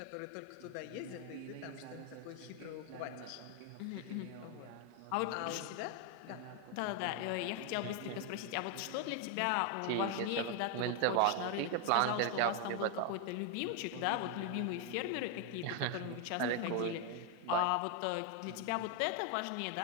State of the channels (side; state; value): both; different; correlation 0.01